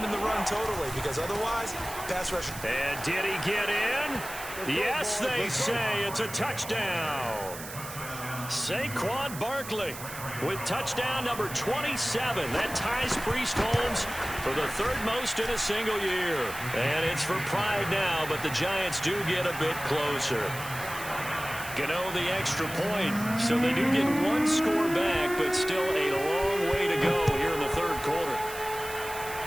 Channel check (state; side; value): noise; right; hiss, 11 dB below the sound